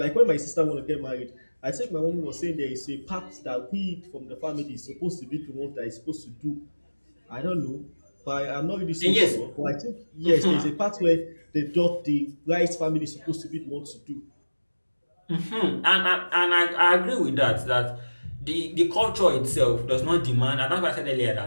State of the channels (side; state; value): both; inverted; correlation -1.00